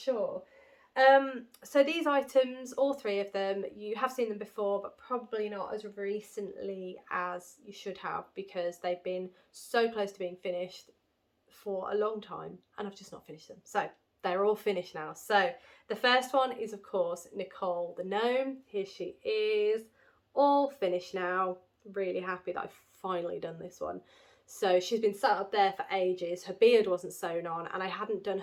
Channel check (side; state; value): both; identical; correlation 1.00